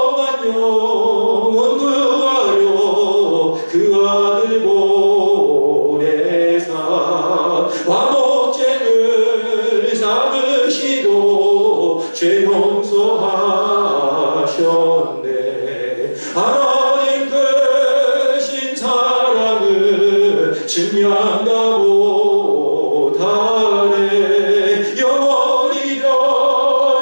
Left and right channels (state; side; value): inverted; both; correlation -1.00